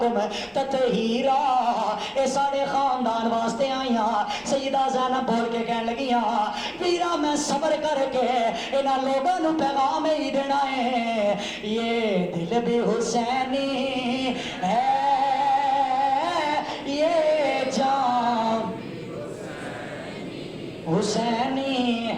تطہیرا. اے ساڈے خاندان واسطے آئیاں. سیدہ زینب بول کے کہنے لگیاں ویرا میں صبر کر کے انہاں لوگاں نوں پیغام ہی دینا ہے, یہ دل بھی حسینی ہے, یہ جان حسینی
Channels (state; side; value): identical; both; correlation 1.00